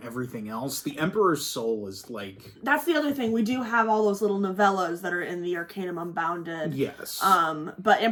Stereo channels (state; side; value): identical; both; correlation 1.00